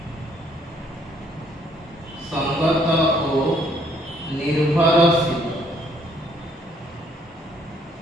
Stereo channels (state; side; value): normal; both; correlation 0.65